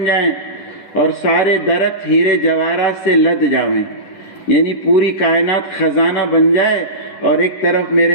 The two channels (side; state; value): right; late; 10 ms